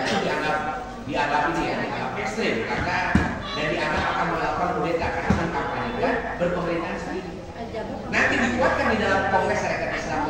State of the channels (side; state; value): both; identical; correlation 1.00